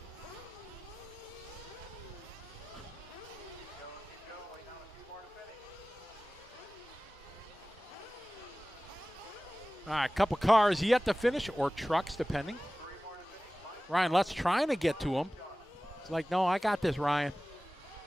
All right, a couple cars yet to finish, or trucks, depending. Ryan Lutz's trying to get to him. It's like, no, I got this, Ryan.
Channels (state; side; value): normal; both; correlation 0.97